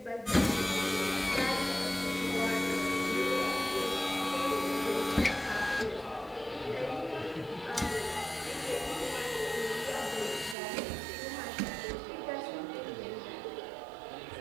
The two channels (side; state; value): left; drops out; at 10.6 s